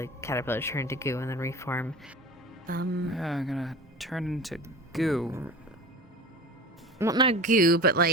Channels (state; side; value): normal; both; correlation 0.35